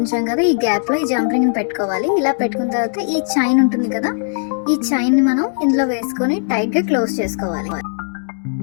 కదా ఈ గ్యాప్ లో ఈ జంప్ పెట్టుకోవాలి. ఇలా పెట్టుకున్న తర్వాత ఈ చైన్ ఉంటుంది కదా ఈ చైన్ ని మనం ఇందులో వేసుకొని టైట్ గా క్లోజ్ చేసుకోవాలి.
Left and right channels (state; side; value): silent; right; digital silence